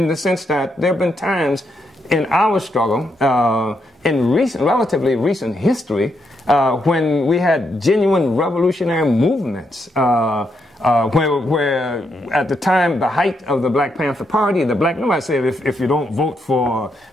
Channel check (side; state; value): both; normal; correlation 0.79